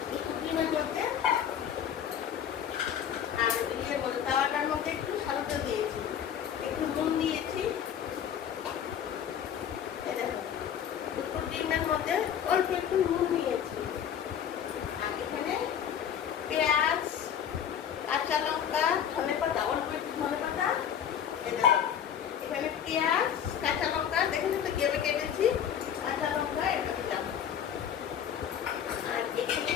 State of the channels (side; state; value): right; quieter; 9.0 dB